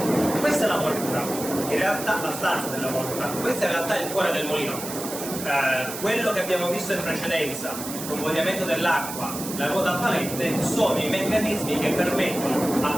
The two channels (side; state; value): right; noise; hiss, 8 dB below the sound